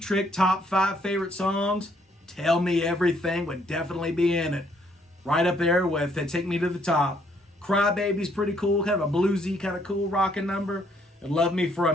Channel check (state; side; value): normal; both; correlation 0.68